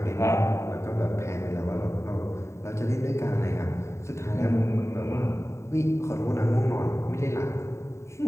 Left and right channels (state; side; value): late; right; 0.14 ms